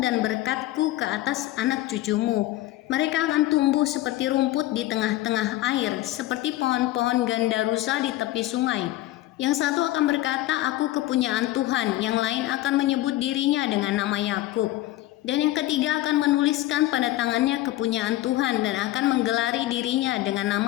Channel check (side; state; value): right; quieter; 16.0 dB